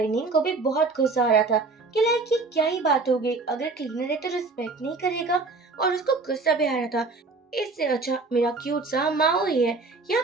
नींद को भी बहुत गुस्सा आ रहा था कि लाइक ये क्या ही बात हो गई, अगर क्लीनर है तो रिस्पेक्ट नहीं करेगा। और उसको गुस्सा भी आ रहा था, इससे अच्छा मेरा क्यूट सा माओ ही है। यहाँ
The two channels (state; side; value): quieter; left; 3.8 dB